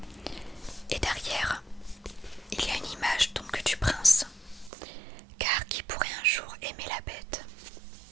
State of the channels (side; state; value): left; drops out; at 4.7 s